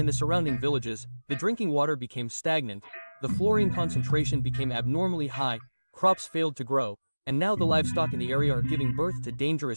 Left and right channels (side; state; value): both; inverted; correlation -1.00